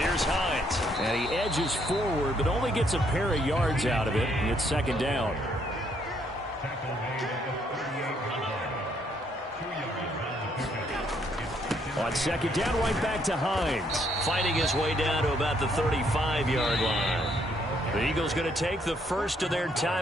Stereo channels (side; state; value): both; normal; correlation 0.70